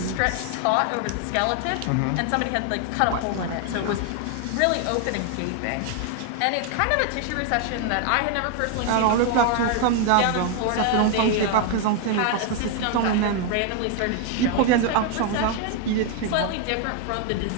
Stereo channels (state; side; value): different; both; correlation 0.00